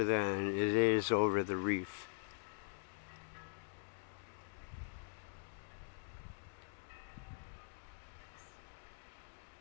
than it is over the reef.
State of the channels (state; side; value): silent; right; digital silence